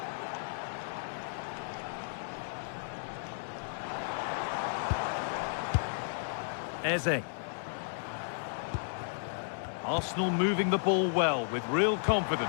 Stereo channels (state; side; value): silent; right; digital silence